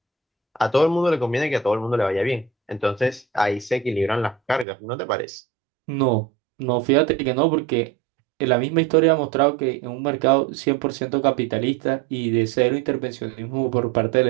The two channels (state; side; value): drops out; left; at 4.7 s